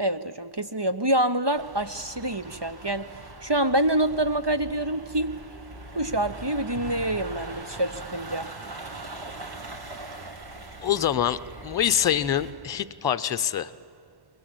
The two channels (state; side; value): late; left; 1.1 ms